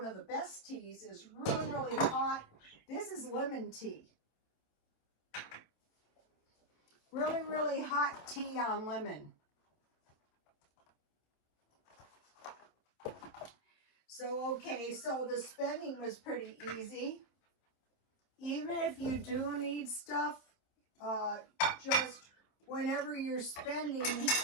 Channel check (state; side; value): late; right; 27 ms